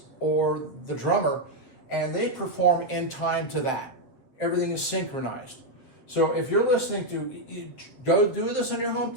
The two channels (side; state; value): right; late; 8.1 ms